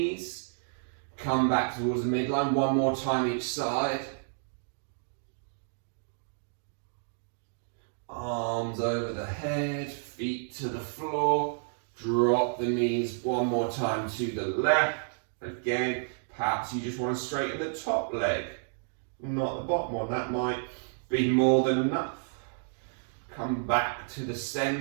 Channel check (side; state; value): left; silent; digital silence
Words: Come back towards the midline, one more time each side. Arms over the head, feet to the floor. Drop the knees one more time to the left. Again, perhaps you just want to straighten the top leg, not the bottom one. That might be more than enough. Come back to the